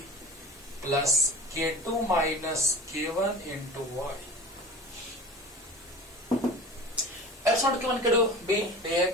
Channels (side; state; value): both; normal; correlation 0.38